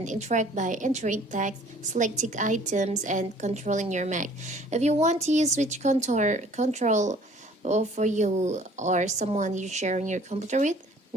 interact by entering text, selecting items, and controlling your Mac. If you want to use switch control for you or someone you're sharing your computer with,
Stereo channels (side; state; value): both; normal; correlation 0.54